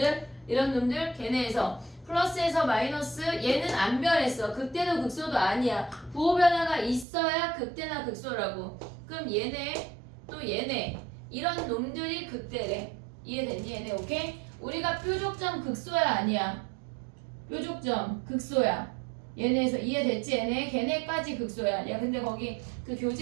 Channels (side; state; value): left; drops out; at 7.1 s